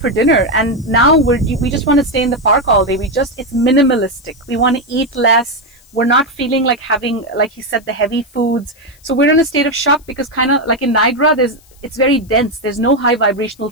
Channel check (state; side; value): noise; left; hiss, 29 dB below the sound